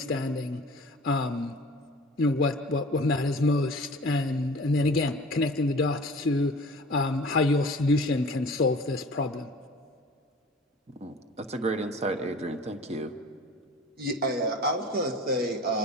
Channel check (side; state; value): both; normal; correlation 0.43